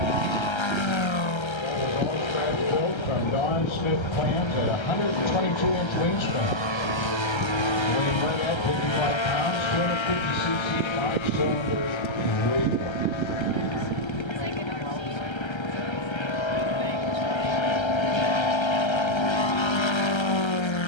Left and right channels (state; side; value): late; right; 1.3 ms